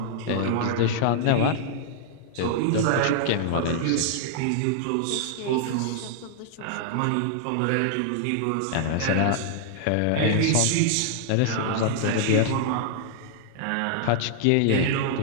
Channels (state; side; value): different; both; correlation -0.01